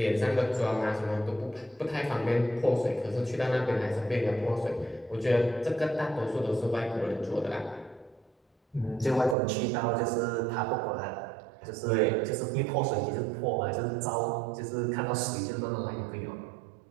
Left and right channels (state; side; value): drops out; left; at 9.3 s